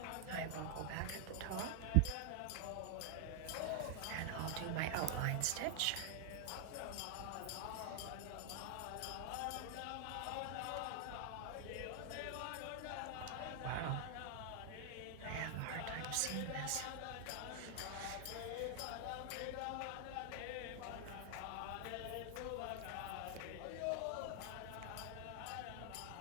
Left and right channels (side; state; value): both; different; correlation 0.00